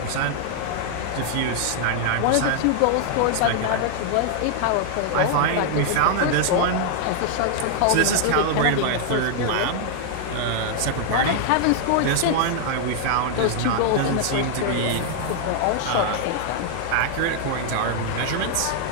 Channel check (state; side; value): different; both; correlation 0.00